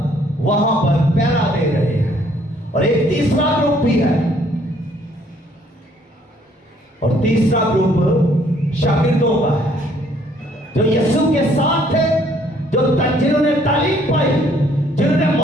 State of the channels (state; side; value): normal; both; correlation 0.63